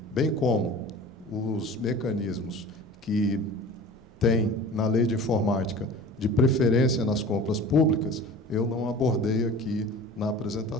bem como os mecanismos que tem na Lei de Informática de preferência nas compras públicas, eu não abordei aqui na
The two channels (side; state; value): both; normal; correlation 0.39